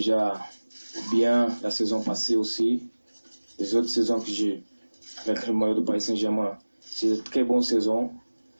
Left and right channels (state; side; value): inverted; both; correlation -1.00